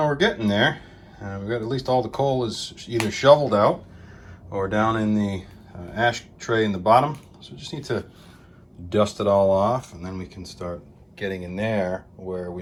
we're getting there. We've got at least all the coal is either shoveled out or down in the ash tray in the bottom. So we just need to dust it all off, and then we can start getting in there where we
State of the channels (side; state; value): both; identical; correlation 1.00